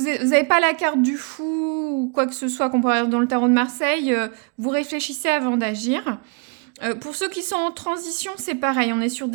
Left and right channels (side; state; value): left; quieter; 36.5 dB